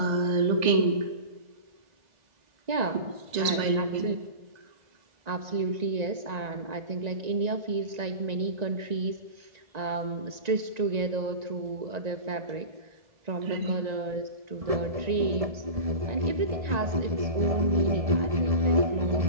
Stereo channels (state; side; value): late; left; 2.0 ms